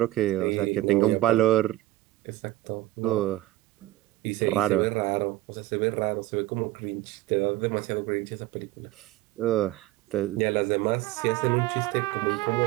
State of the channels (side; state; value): left; quieter; 16.6 dB